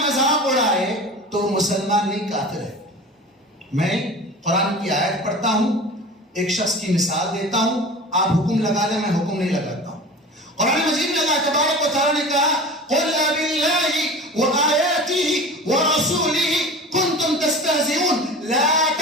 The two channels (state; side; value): normal; both; correlation 0.36